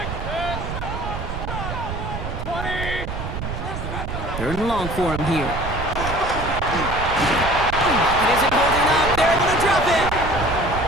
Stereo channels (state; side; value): noise; right; rumble, 5 dB below the sound